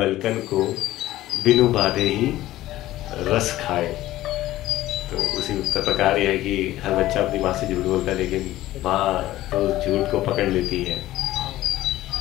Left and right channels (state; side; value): quieter; right; 15.4 dB